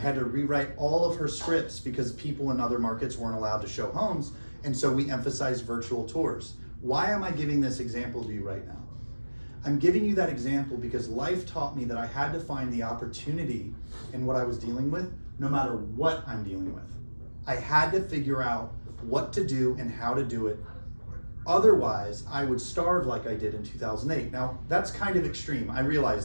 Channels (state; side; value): inverted; both; correlation -1.00